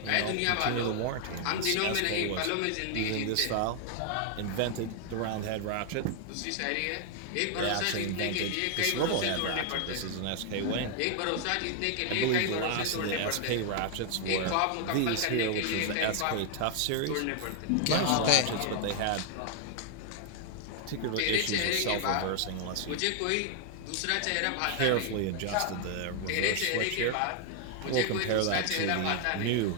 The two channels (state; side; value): different; both; correlation 0.00